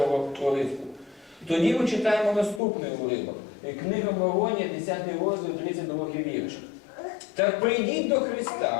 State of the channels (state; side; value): drops out; right; at 2.6 s